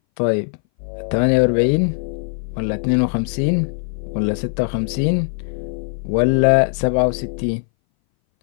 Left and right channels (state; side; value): silent; right; 61 dB below the other